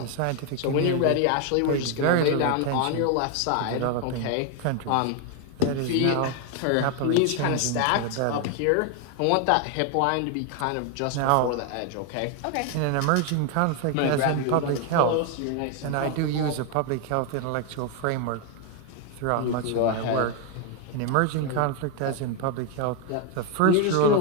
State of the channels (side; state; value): both; different; correlation 0.01